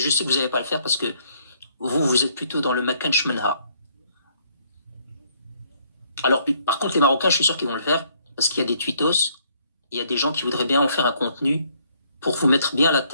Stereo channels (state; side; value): inverted; both; correlation -0.66